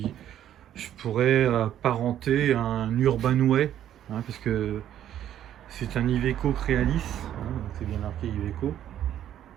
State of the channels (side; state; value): left; quieter; 11.1 dB